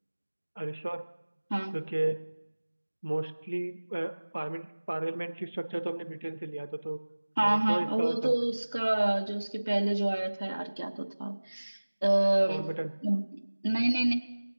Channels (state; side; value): inverted; both; correlation -1.00